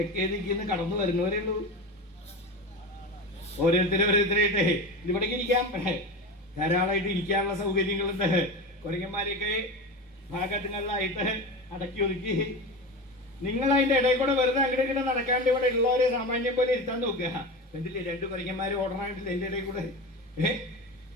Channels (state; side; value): normal; both; correlation 0.26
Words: ദിക്കിന്ന് കടന്നു വരുന്നവരേ ഉള്ളൂ. ഓരോരുത്തരായിട്ടേ ഇവിടേക്ക് ഇരിക്കാം, ധാരാളമായിട്ട് ഇരിക്കാനുള്ള സൗകര്യങ്ങളുണ്ട്. കുരങ്ങന്മാരെയൊക്കെ ഭാഗങ്ങളിലായിട്ട് അടക്കി ഒതുക്കി നിങ്ങൾ അതിന്റെ ഇടയിൽ കൂടെ വെറുതെ അങ്ങോട്ട് നടക്കാണ്ട് ഇവിടെ ഉള്ളവരെ സാമാന്യം പോലെ ഇരുത്താൻ നോക്കുക. എന്തില്ലേ 2 കുരങ്ങന്മാര് ഓടണായിട്ടില്ല എന്റെ ഇടയിൽ കൂടെ.